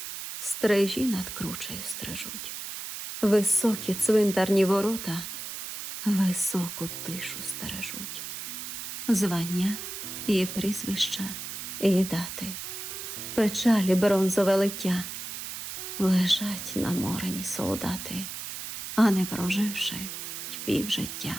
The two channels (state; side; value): noise; right; hiss, 8 dB below the sound